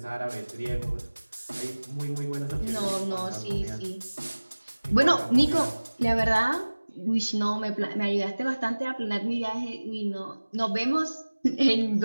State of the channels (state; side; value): inverted; both; correlation -1.00